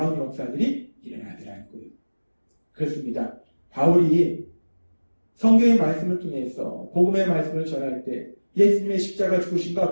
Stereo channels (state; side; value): inverted; both; correlation -1.00